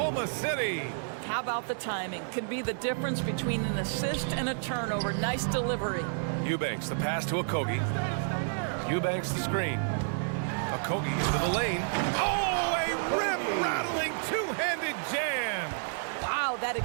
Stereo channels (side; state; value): left; silent; digital silence